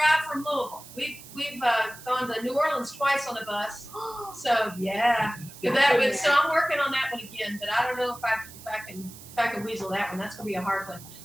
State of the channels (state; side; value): noise; right; hiss, 17 dB below the sound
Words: from Louisville. We've gone to New Orleans twice on a bus. So yeah, so I'm working on that one again. But I don't know if I can weasel that one. That's gonna be a hard one.